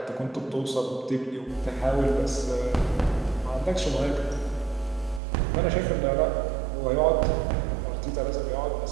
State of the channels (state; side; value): drops out; left; at 5.2 s